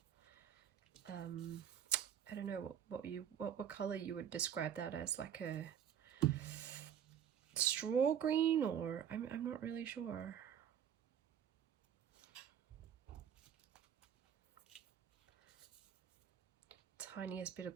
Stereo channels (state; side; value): quieter; left; 9.2 dB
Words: I don't know what color you would describe that as, like a straw green, or I'm not really sure. Tiniest bit